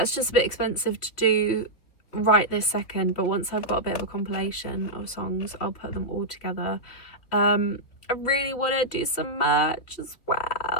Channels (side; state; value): right; late; 3.3 ms